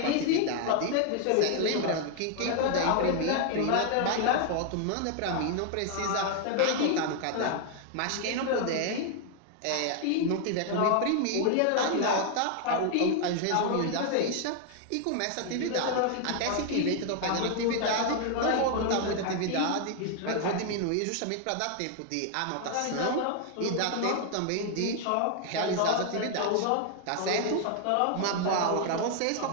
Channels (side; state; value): both; different; correlation 0.00